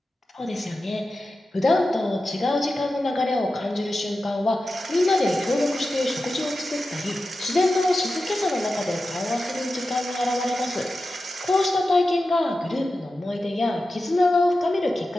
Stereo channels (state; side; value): normal; both; correlation 0.93